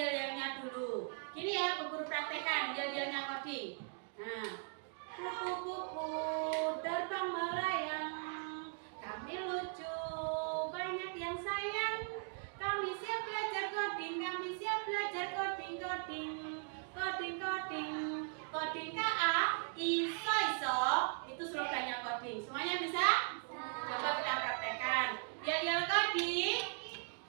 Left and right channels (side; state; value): left; silent; 52 dB below the other